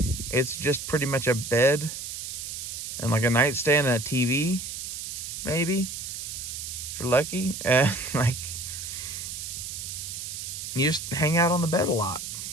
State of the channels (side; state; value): right; noise; hiss, 7 dB below the sound